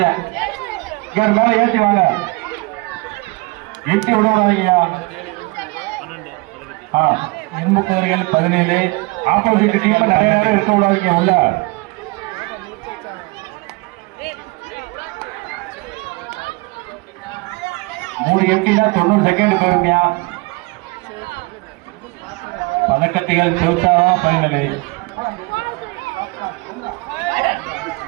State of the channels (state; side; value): quieter; left; 26.4 dB